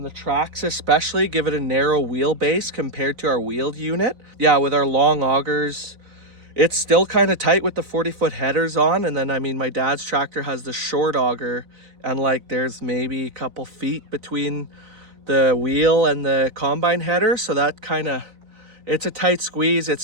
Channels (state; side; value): late; left; 4.0 ms